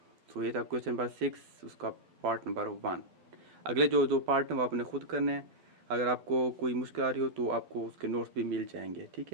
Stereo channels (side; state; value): left; late; 12 ms